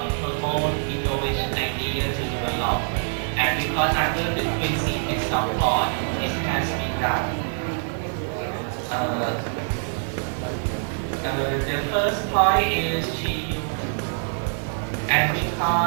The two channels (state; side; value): silent; left; 62 dB below the other